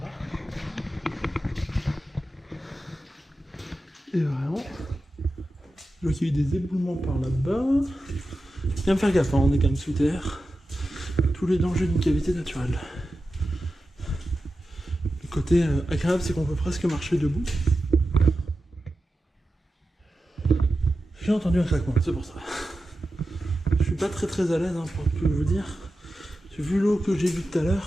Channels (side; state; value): both; normal; correlation 0.92